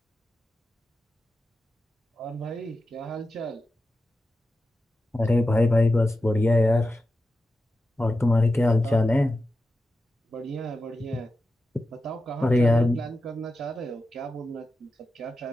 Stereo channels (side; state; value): both; normal; correlation 0.91